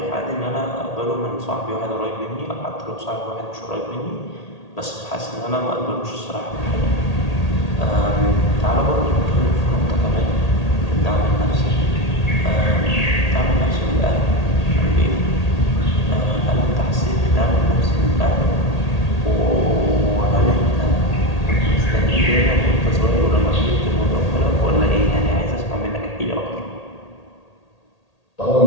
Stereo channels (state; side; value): late; right; 1.8 ms